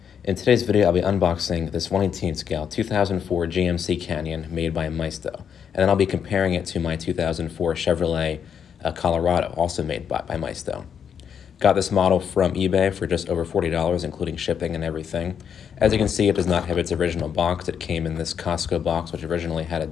In today's video, I'll be unboxing this 1/18 scale 2004 GMC Canyon made by Maisto, and then I'll be comparing it to my 2004 Chevrolet Colorado, also made by Maisto. Got this model from eBay for just over $40, including shipping and everything. As you can see, it does not have its original box. It came in this Costco box, which originally had a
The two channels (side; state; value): right; quieter; 7.8 dB